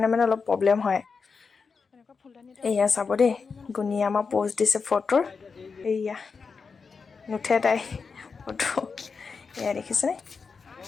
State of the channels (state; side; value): quieter; right; 5.1 dB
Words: অলপ প্ৰব্লেম হয়। এয়া চাব দেই, গুণীয়ে আমাৰ প'ষ্ট দিছে ফটোৰ। এয়া নুঠে তাই ফটো, এয়া দেখিছেনে।